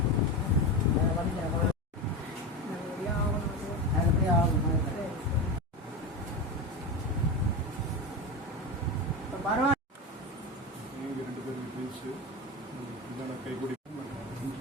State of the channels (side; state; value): both; normal; correlation 0.20